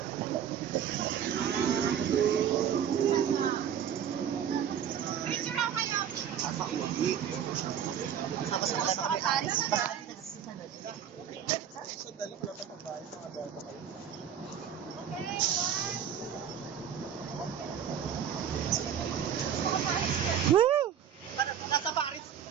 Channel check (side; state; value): left; quieter; 8.8 dB